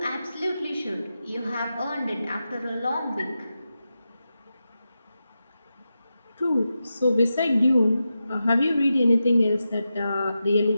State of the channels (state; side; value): inverted; both; correlation -0.90